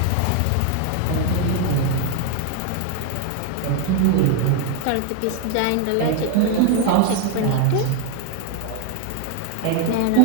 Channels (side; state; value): both; different; correlation 0.01